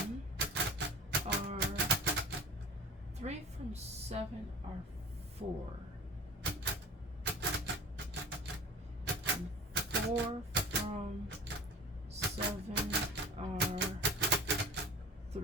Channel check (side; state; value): both; normal; correlation 0.39